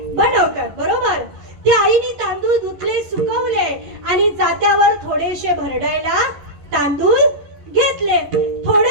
बनवतात. बरोबर. त्या आईने तांदूळ धुतले, सुकवले आणि जात्यावर थोडेसे भरडायला तांदूळ घेतले.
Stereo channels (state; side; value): late; left; 11 ms